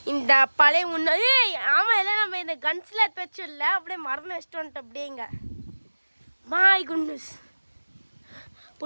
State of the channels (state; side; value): inverted; both; correlation -1.00